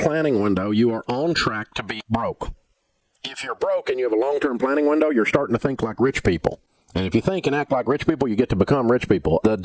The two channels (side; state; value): both; identical; correlation 1.00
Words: window, you are on track to be broke. If you're broke and you have a long-term planning window, you're starting to think like rich people. And if you think and act like rich people, you get to become rich people. The